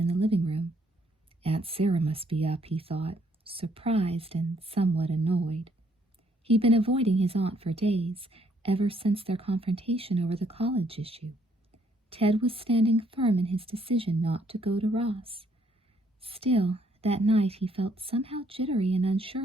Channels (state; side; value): normal; both; correlation 0.68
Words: the living room. Aunt Sarah must be up, he thought, surprised and somewhat annoyed. He'd been avoiding his aunt for days, ever since their confrontation over the college issue. Ted was standing firm in his decision not to go to Ross. Still, that night he felt somehow jittery and